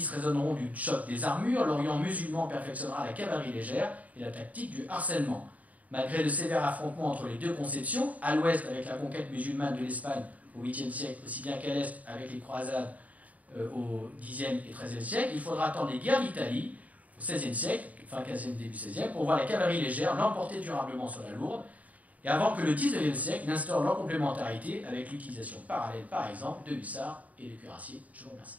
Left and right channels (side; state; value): left; late; 0.072 ms